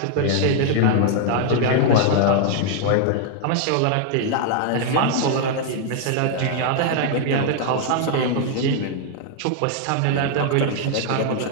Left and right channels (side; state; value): both; different; correlation 0.00